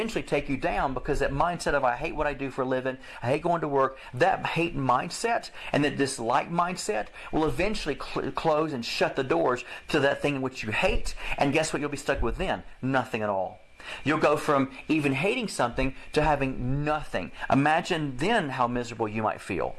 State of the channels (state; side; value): identical; both; correlation 1.00